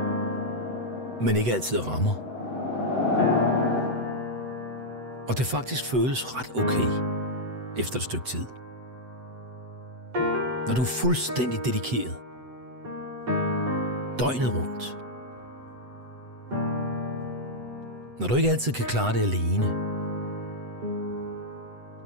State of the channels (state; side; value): late; left; 7.9 ms